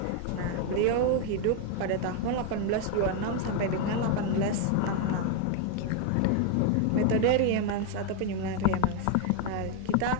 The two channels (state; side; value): different; both; correlation 0.01